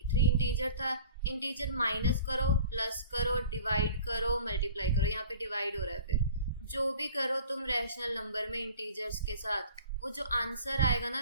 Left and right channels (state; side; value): inverted; both; correlation -0.44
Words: इंटीजर था। इंटीजर माइनस करो, प्लस करो, डिवाइड करो, मल्टीप्लाई करो। यहाँ पे डिवाइड हो रहा है। फिर जो भी करो तुम रैशनल नंबर में इंटीजर्स के साथ, वो जो आंसर आएगा ना